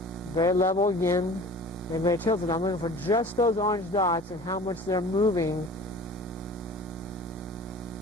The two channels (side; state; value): both; normal; correlation 0.43